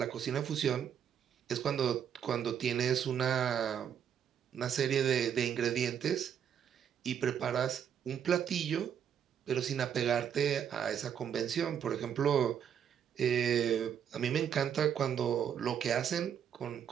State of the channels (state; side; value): quieter; left; 8.6 dB